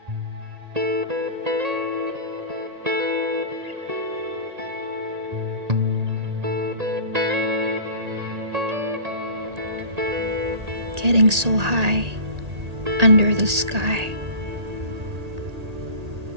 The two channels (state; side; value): late; left; 1.8 ms